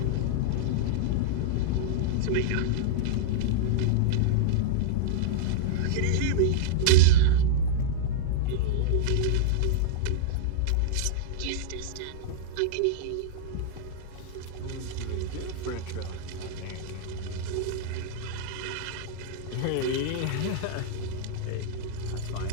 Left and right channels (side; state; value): both; different; correlation -0.02